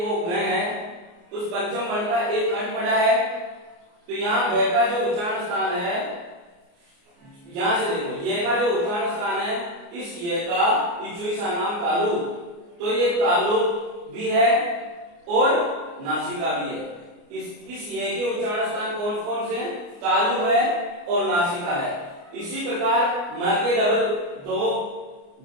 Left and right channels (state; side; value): late; left; 29 ms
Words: वो ग है उस पंचम वर्ण का एक कंठ पढ़ा है, तो यहाँ ग का जो उच्चारण स्थान है, यहां से देखो ये का जो उच्चारण स्थान है, इस ये का इचुईसा नाम तालु, तो ये तालु भी है और नासिका भी है। इस ये के उच्चारण स्थान कौन कौन से हैं, तालु है और नासिका है। इसी प्रकार म के डबल दो